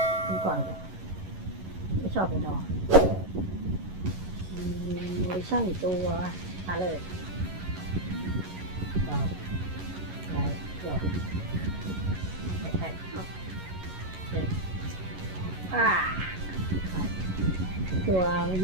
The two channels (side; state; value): left; late; 11 ms